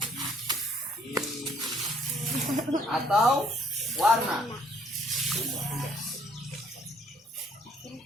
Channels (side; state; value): both; normal; correlation 0.63